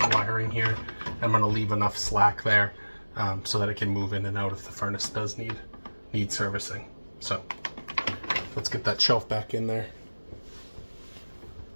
the wiring here. I'm going to leave enough slack there so that it can move in and out if the furnace does need servicing. So let's get that shelf back in there.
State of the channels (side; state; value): both; inverted; correlation -1.00